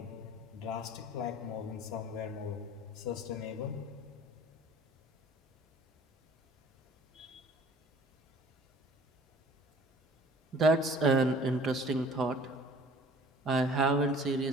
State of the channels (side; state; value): both; normal; correlation 0.50